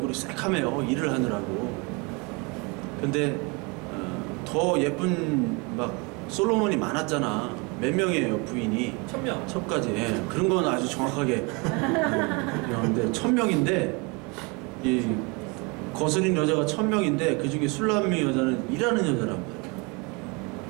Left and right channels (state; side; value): quieter; left; 29.4 dB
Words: 새카매요, 일을 하느라고. 근데 더 예쁜 막 솔로몬이 많았잖아. 몇 명이에요, 부인이? 1000명. 첩까지. 예, 그런 건 아주 정확하게. 근데 1000명인데 이 거스린 여자가 1000명인데 그 중에 술람미 여자는 일하는 여자란 말이에요.